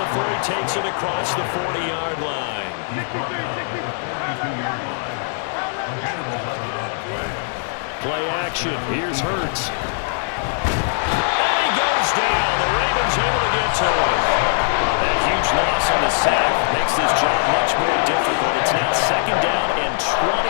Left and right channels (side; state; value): right; silent; 56 dB below the other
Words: he takes it across the 40-yard line. Play action. Here's Hurts. And he goes down. The Ravens able to get to him. That huge loss on the sack makes this job much more difficult. It's now 2nd down and